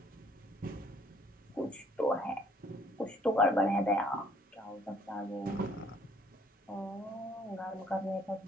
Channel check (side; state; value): both; normal; correlation 0.62